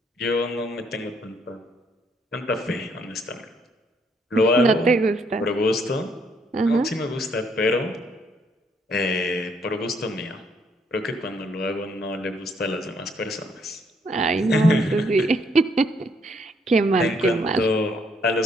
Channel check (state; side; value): normal; both; correlation 0.70